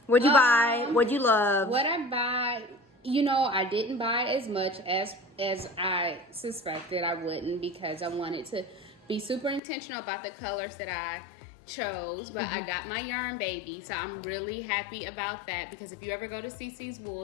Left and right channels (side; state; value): right; drops out; at 9.6 s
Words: What'd you buy? What'd you love? What I buy, you know, I didn't buy as much as I suspected I wouldn't, because I wanted to be super intentional about the colors that I chose. But I got my yarn baby, so I'm really happy about that, because if you ever go to CC's